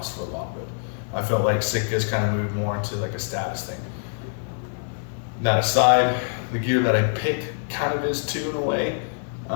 for a lot of it. I felt like Sitka's kind of moved more into like a status thing. That aside, the gear that I picked kind of is too in a way,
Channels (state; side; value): silent; right; digital silence